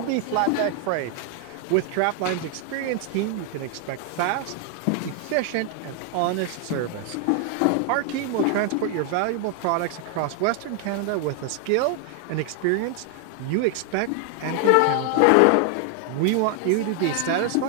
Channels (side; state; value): both; different; correlation 0.00